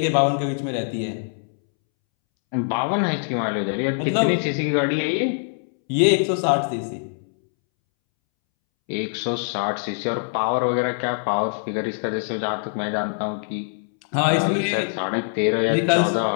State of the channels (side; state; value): right; silent; 63 dB below the other